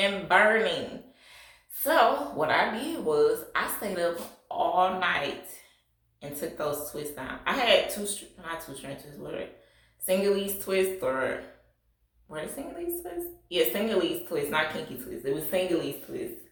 burning. So what I did was I stayed up all night and took those twists down. I had not two strand twists, what are they? Single-leaf twists, or were they single-leaf twists? Yeah, single-leaf twists, not kinky twists. It was single-leaf twists.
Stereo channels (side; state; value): both; identical; correlation 1.00